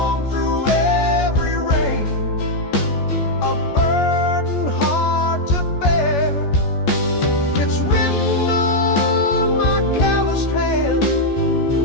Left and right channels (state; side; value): late; right; 14 ms